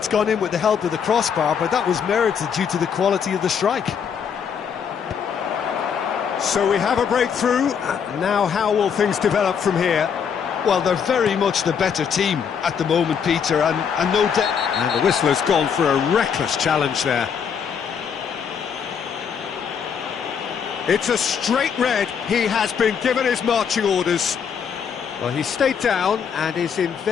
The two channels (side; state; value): right; quieter; 7.2 dB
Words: gone in with the help of the crossbar, but that was merited due to the quality of the strike. So we have a breakthrough. Now how will things develop from here? Well, they're very much the better team at the moment, Peter, and no doubt. And the whistle has gone for a reckless challenge there. It's a straight red. He has been given his marching orders. Well, he stayed down and is in